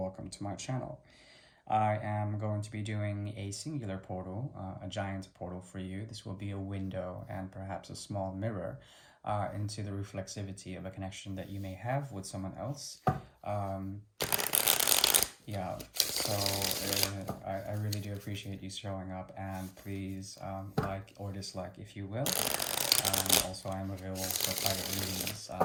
to my channel. I am going to be doing a singular portal, a giant portal for you. This will be a window and perhaps a small mirror into the reflexivity of a connection that you may have with someone else. Yeah, so I really do appreciate you showing up, and please like or dislike if you will. Also, I am available for private readings.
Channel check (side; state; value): both; identical; correlation 1.00